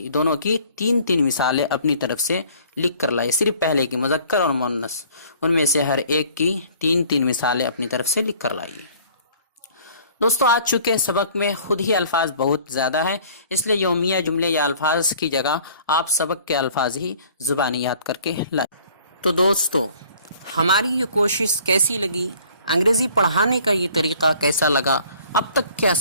کی 3 مثالیں اپنی طرف سے لکھ کر لائے. صرف پہلے کی مذکر اور مؤنث، ان میں سے ہر ایک کی 3 مثالیں اپنی طرف سے لکھ کر لائیے. دوستو آج چونکہ سبق میں خود ہی الفاظ بہت زیادہ ہیں، اس لیے یومیہ جملے یا الفاظ کی جگہ آپ سبق کے الفاظ ہی زبانی یاد کر کے لائیں. تو دوستو ہماری یہ کوشش کیسی لگی، انگریزی پڑھانے کا یہ طریقہ کیسا لگا، اب تک کے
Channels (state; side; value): inverted; both; correlation -0.53